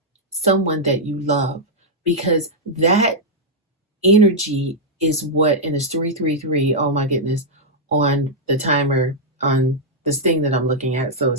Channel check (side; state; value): both; normal; correlation -0.05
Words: someone that you love, because that energy is what, and it's 333. Oh my goodness, on the timer on this thing that I'm looking at. So